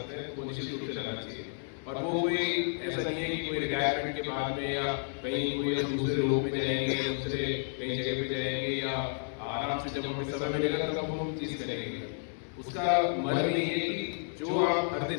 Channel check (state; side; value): silent; right; digital silence